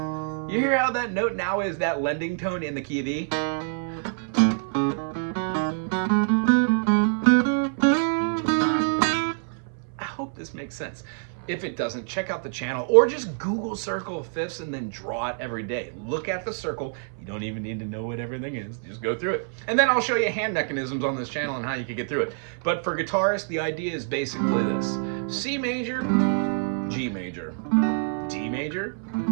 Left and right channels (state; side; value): silent; left; 58 dB below the other